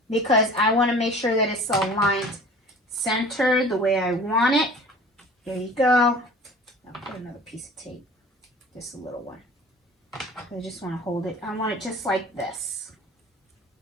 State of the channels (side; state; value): both; normal; correlation 0.44